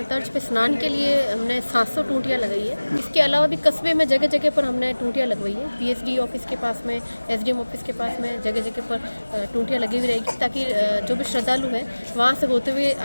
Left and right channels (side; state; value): both; inverted; correlation -1.00